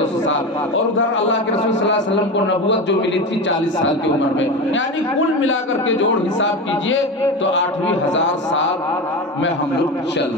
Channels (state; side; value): normal; both; correlation 0.23